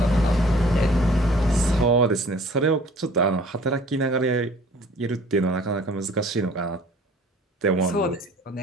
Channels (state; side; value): normal; both; correlation 0.51